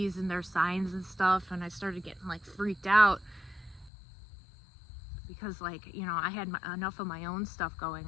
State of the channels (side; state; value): right; drops out; at 3.9 s